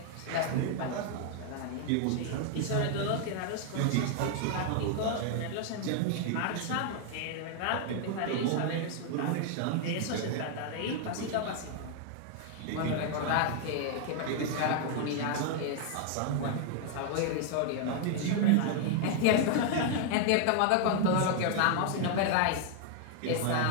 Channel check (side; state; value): both; different; correlation 0.00